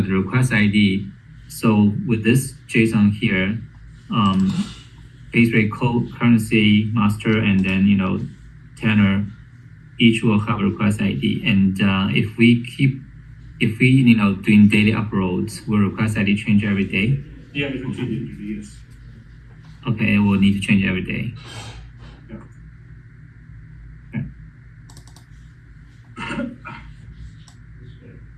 request ID. So with this JSON here, base rate, code, currency, master, and then tenor, each will have a request ID. And if we doing daily uploads, will request ID change every day? Yeah, it will change every day, yes. Okay, it will need to change every day.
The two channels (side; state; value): both; identical; correlation 1.00